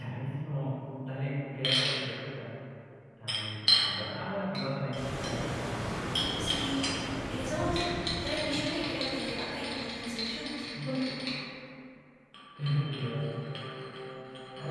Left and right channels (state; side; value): identical; both; correlation 1.00